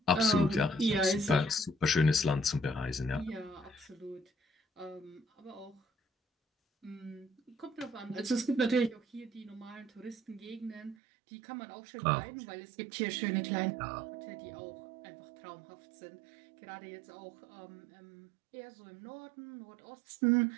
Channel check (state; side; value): drops out; left; at 11.0 s